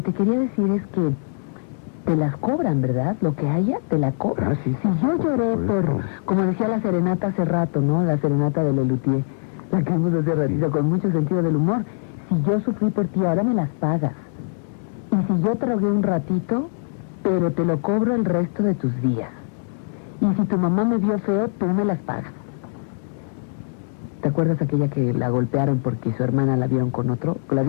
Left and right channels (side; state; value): right; silent; digital silence